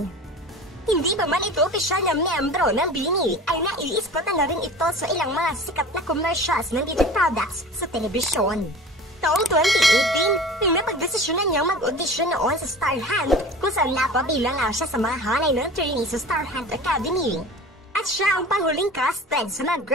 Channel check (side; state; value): both; normal; correlation 0.38